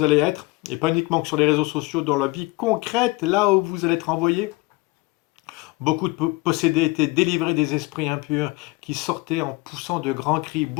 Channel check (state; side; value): quieter; right; 23.1 dB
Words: allez être, et pas uniquement que sur les réseaux sociaux, dans la vie concrète, là où vous allez être envoyé. Beaucoup de possédés étaient délivrés des esprits impurs qui sortaient en poussant de grands cris.